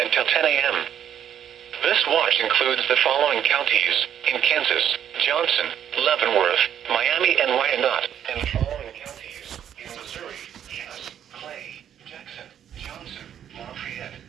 until 10 a.m. This watch includes the following counties in Kansas: Johnson, Leavenworth, Miami, and Wyandotte, and the following counties in Missouri: Cass, Clay, Jackson, Johnson, Lafayette,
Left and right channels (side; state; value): left; quieter; 9.6 dB